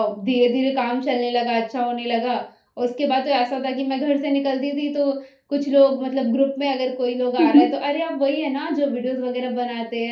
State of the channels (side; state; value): both; identical; correlation 1.00